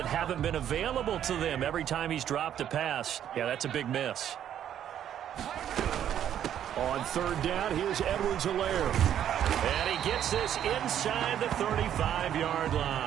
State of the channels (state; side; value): quieter; left; 10.2 dB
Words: haven't been available to them every time he's dropped a pass. Yeah, that's a big miss. On third down, here's Edwards-Helaire. And he gets this inside the 35-yard